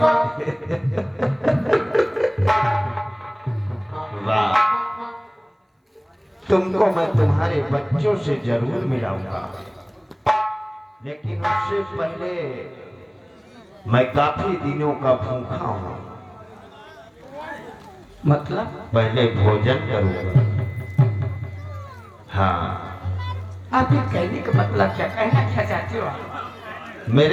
वाह, तुमको मैं तुम्हारे बच्चों से जरूर मिलाऊंगा, लेकिन उससे पहले मैं काफी दिनों का भूखा हूँ। मतलब? पहले भोजन करूंगा। हाँ, आप ये कहने का मतलब क्या, कहना क्या चाहते हो आप?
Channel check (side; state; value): both; identical; correlation 1.00